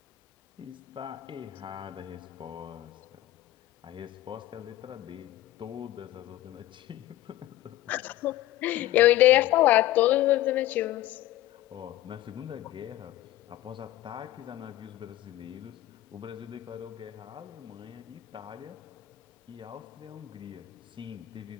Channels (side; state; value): right; quieter; 14.9 dB